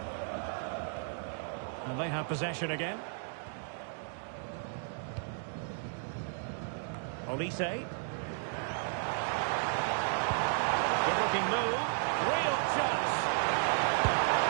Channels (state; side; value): silent; left; 55 dB below the other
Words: And they have possession again. Olise. Good-looking move. Real chance.